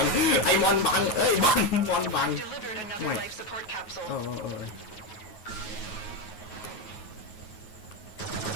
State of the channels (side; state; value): right; late; 9.3 ms